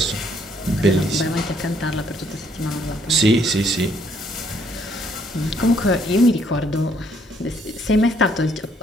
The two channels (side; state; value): both; normal; correlation 0.67